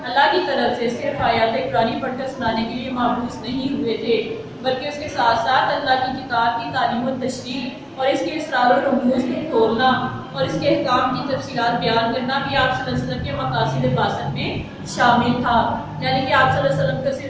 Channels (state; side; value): identical; both; correlation 1.00